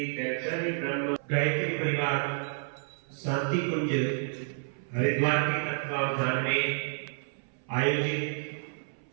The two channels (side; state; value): left; silent; 57 dB below the other